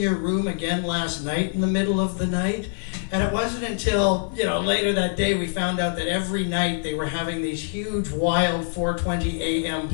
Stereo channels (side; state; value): right; silent; digital silence